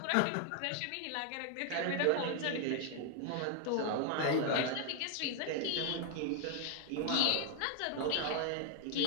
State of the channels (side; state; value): both; different; correlation 0.00